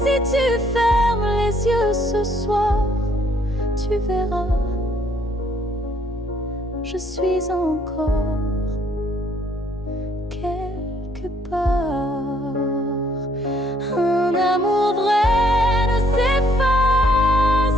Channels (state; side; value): normal; both; correlation 0.66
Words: tu fermes les yeux ce soir, tu verras, je suis encore quelque part. Un amour vrai ne